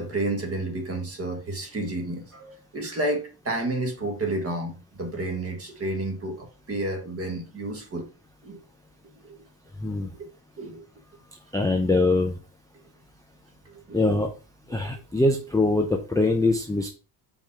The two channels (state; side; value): normal; both; correlation 0.57